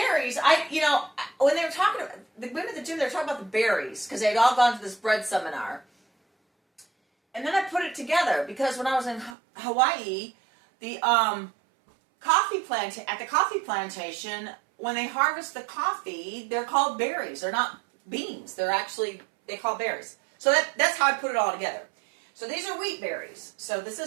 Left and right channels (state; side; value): drops out; left; at 9.3 s